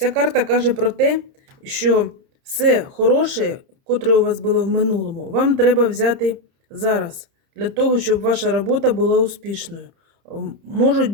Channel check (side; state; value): left; late; 30 ms